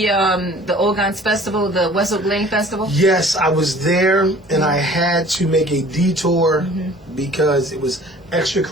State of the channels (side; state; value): both; normal; correlation 0.49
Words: Ogans Festival, the Wessel Glen Festival? Yes, I was there, and I had to make a detour because it was extra